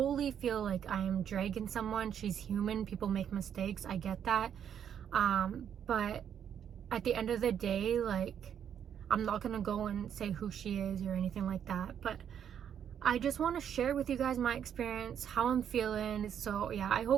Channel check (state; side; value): quieter; left; 8.8 dB